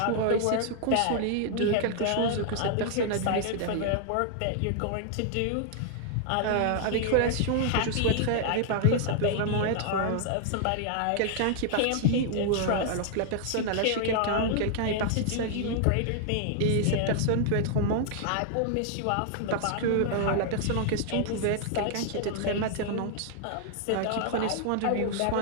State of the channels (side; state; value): both; different; correlation 0.00